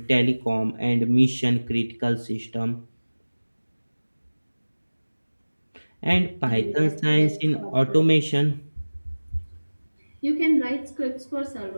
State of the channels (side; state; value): both; inverted; correlation -1.00